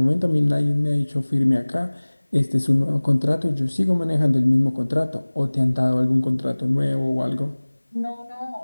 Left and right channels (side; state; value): both; inverted; correlation -1.00